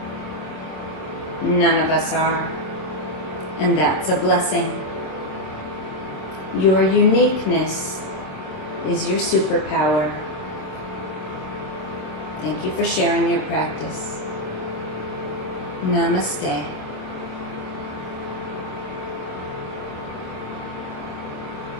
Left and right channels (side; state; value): right; late; 26 ms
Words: None of us are, and that's a blessing. Your uniqueness is your superpower. Thank you for sharing your practice. Namaste.